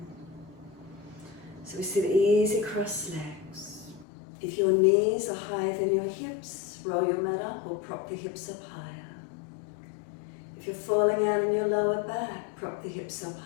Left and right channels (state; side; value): drops out; right; at 4.0 s